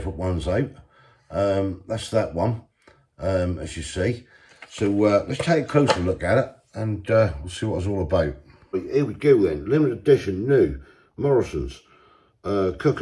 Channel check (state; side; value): identical; both; correlation 1.00